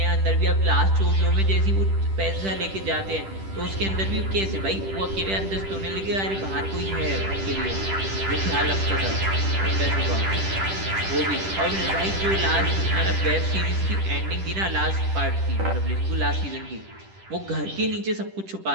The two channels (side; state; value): left; late; 10 ms